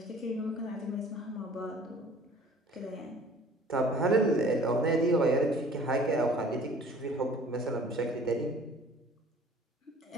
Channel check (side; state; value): both; normal; correlation 0.50